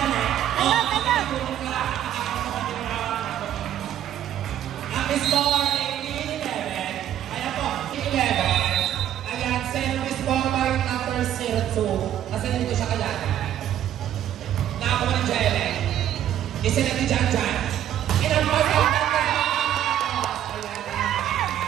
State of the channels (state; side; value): quieter; left; 11.2 dB